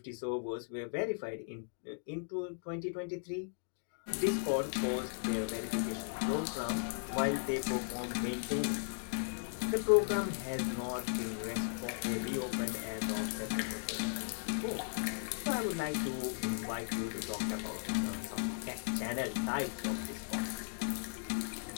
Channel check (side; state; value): right; silent; digital silence